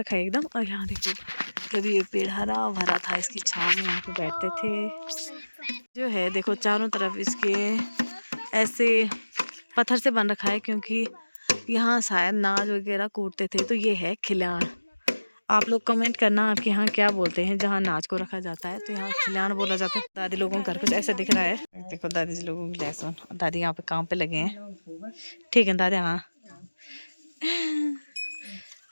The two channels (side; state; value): both; inverted; correlation -1.00